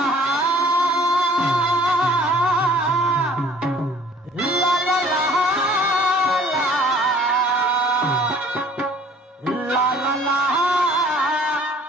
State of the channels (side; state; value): both; normal; correlation 0.54